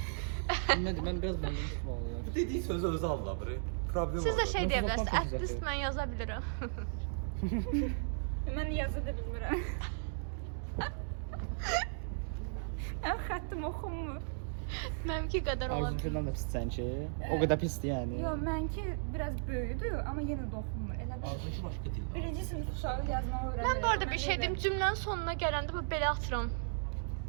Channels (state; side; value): silent; left; digital silence